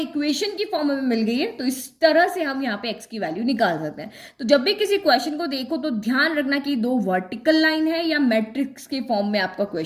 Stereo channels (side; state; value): both; identical; correlation 1.00